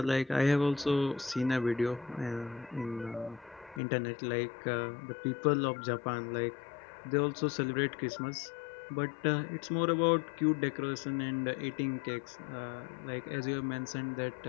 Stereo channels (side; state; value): right; drops out; at 3.8 s